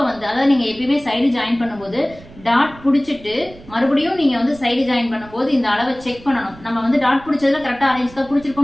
வந்து, அதாவது நீங்க எப்பயுமே சைடு ஜாயின் பண்ணும்போது டாட் பிடிச்சிட்டு மறுபடியும் நீங்க வந்து சைடு ஜாயின் பண்ணும்போது இந்த அளவை செக் பண்ணணும். நம்ம வந்து டாட் பிடிச்சதுல கரெக்டா 1/2 இன்ச் தான்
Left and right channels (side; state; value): right; noise; rumble, 21 dB below the sound